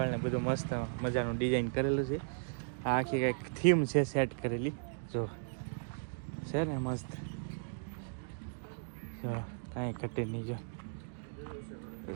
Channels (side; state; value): left; silent; digital silence